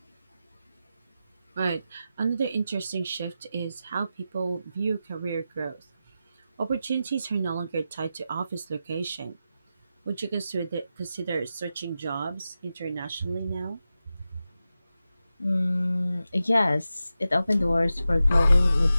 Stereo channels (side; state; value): both; inverted; correlation -0.91